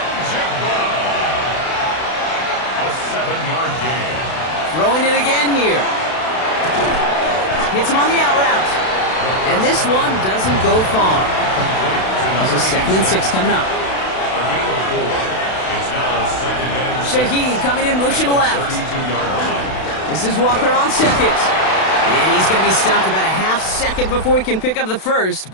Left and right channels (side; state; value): right; late; 32 ms